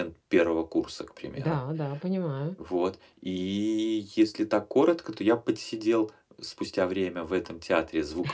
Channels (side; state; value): both; identical; correlation 1.00